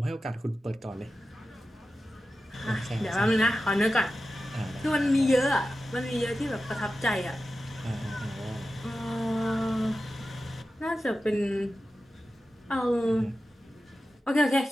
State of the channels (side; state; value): both; normal; correlation 0.93